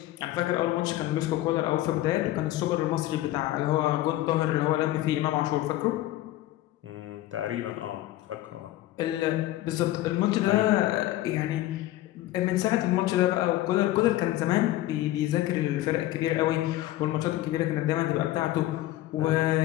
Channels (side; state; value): right; quieter; 15.3 dB